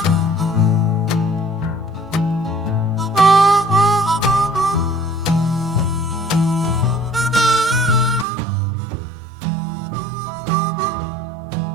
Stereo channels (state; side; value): drops out; left; at 8.2 s